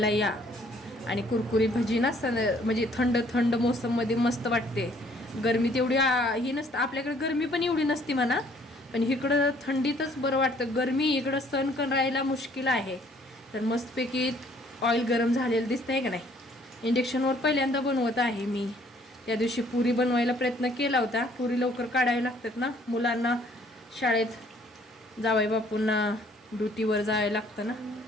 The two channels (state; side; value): normal; both; correlation 0.61